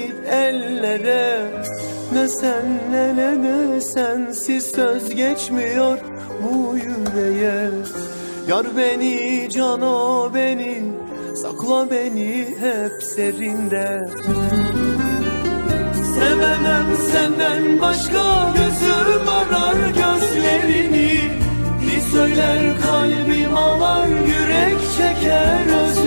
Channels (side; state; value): both; inverted; correlation -1.00